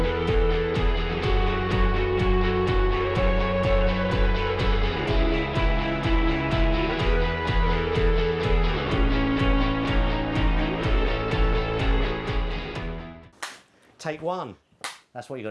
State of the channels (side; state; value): both; identical; correlation 1.00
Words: Take one. That's what you